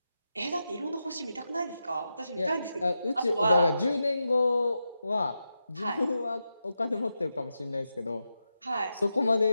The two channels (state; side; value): inverted; both; correlation -0.88